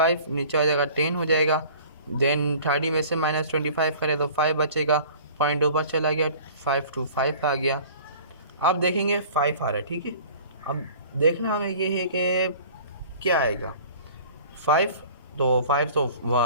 नीचे आ जाएगा, 10 हो जाएगा, देन 30 में से -25 करें तो 5 बचेगा, पॉइंट ऊपर चला गया, 5 to 5 आ गया। अब देखेंगे 5 आ रहा है, ठीक है। अब देखना हमें ये है कि क्या आएगा, 5, तो 5 तो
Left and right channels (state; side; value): inverted; both; correlation -0.46